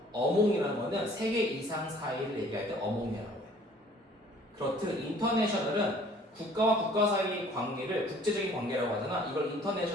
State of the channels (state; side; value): normal; both; correlation 0.55